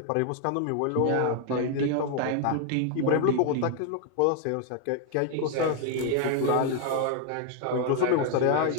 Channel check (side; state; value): both; different; correlation 0.00